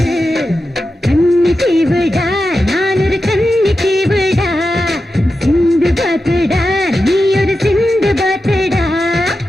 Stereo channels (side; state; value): both; normal; correlation 0.91